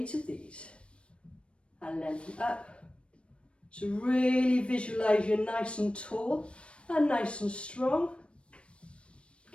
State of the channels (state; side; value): late; right; 0.059 ms